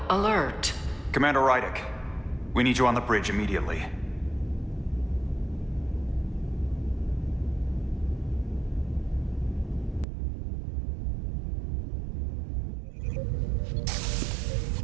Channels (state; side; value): drops out; left; at 10.1 s